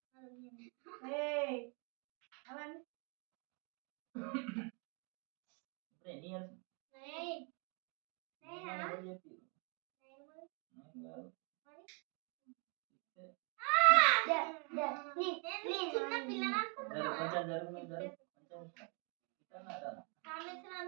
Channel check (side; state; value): left; quieter; 36.3 dB